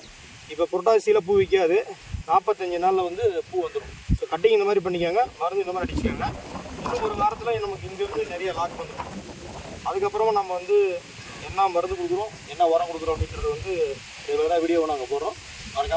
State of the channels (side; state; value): both; identical; correlation 1.00